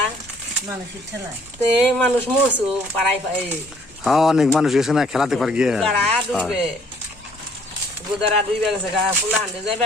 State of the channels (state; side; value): normal; both; correlation 0.61